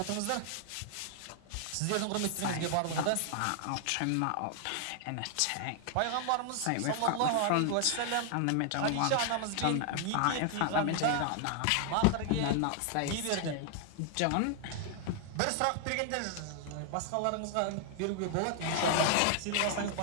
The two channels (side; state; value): both; different; correlation 0.00